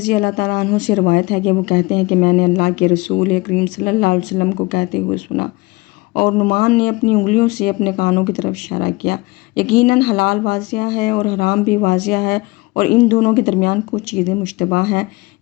اللہ تعالیٰ عنہ سے روایت ہے کہ وہ کہتے ہیں کہ میں نے اللہ کے رسول کریم صلی اللہ علیہ وسلم کو کہتے ہوئے سنا، اور نعمان نے اپنی انگلیوں سے اپنے کانوں کی طرف اشارہ کیا، یقیناً حلال واضح ہے اور حرام بھی واضح ہے، اور ان دونوں کے درمیان کچھ چیزیں مشتبہ ہیں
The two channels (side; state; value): right; quieter; 23.2 dB